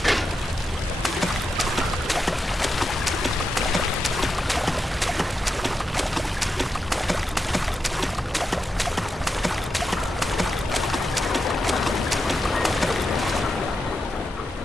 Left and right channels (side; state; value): both; normal; correlation 0.87